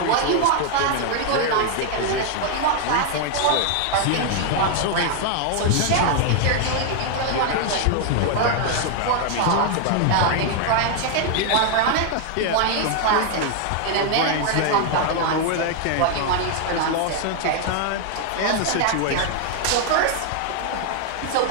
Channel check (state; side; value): different; both; correlation 0.00